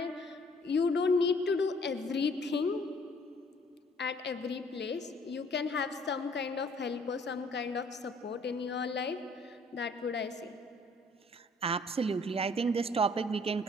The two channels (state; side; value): normal; both; correlation 0.59